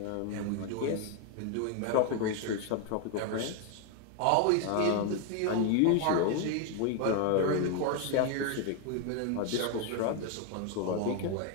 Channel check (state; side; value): different; both; correlation 0.01